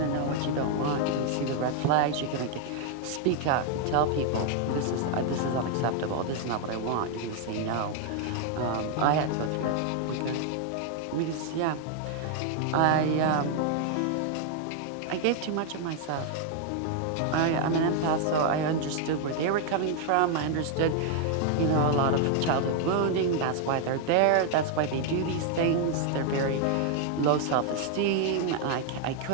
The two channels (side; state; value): both; different; correlation 0.00